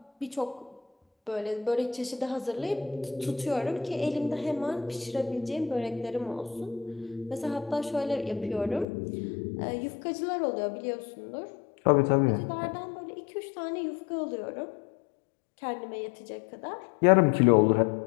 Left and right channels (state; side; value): drops out; right; at 8.8 s